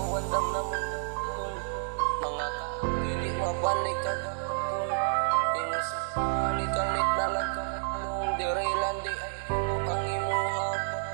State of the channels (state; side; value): silent; left; digital silence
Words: wandam na mong gawaton. Mga kaagi di mabalik kagahapon. Inusugan ikalit na lagkapalong. Dirilan di ay kuto ang imuhang